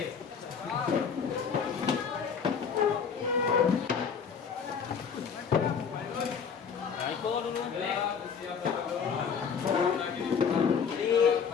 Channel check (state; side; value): quieter; right; 6.5 dB